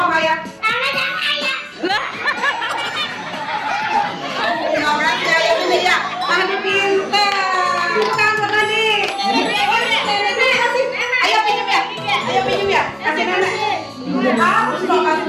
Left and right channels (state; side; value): identical; both; correlation 1.00